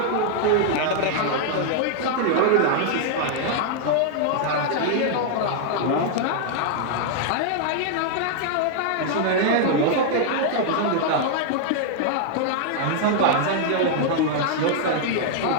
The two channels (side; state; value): both; different; correlation 0.00